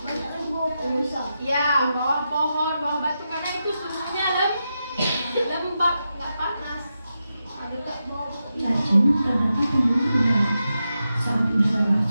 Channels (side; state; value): both; inverted; correlation -0.88